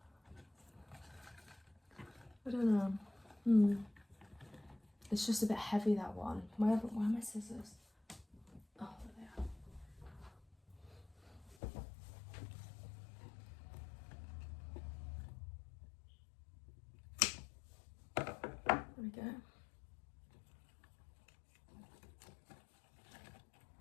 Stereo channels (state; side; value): drops out; right; at 11.6 s